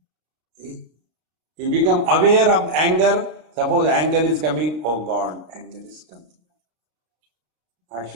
You become aware of anger. Suppose anger is coming, oh God, anger is coming. I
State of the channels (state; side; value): late; left; 33 ms